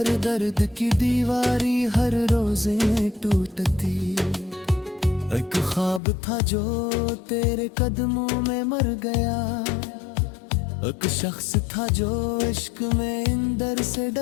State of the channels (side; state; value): right; drops out; at 6.0 s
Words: दर्द की दीवारी हर रोज टूटती। एक ख्वाब था जो तेरे कदमों में मर गया, एक शख्स था जो इश्क में इंदर से